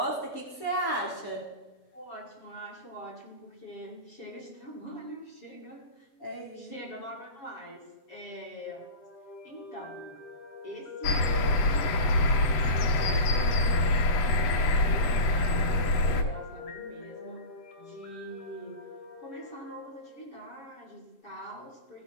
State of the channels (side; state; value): right; late; 8.0 ms